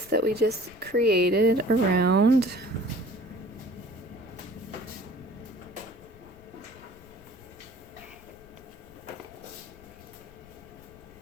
that we just created around.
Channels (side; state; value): left; noise; rumble, 22 dB below the sound